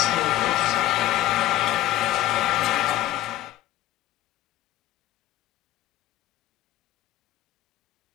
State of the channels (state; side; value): quieter; right; 14.2 dB